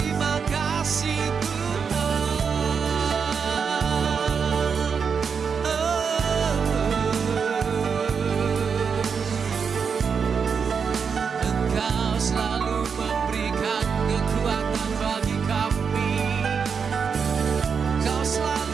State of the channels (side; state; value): left; quieter; 6.1 dB